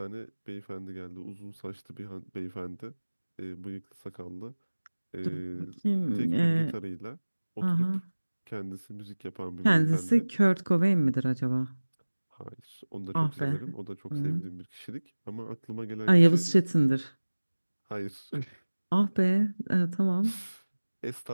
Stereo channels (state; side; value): inverted; both; correlation -1.00